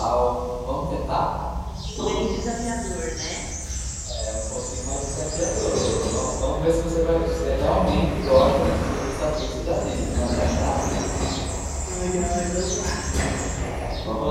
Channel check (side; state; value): both; identical; correlation 1.00